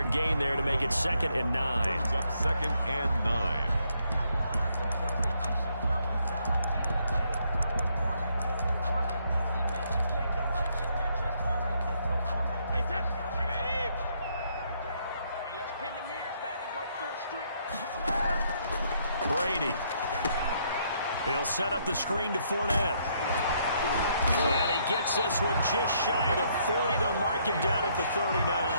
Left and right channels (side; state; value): both; inverted; correlation -0.72